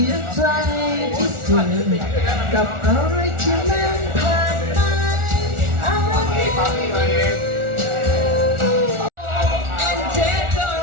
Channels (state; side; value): late; left; 1.4 ms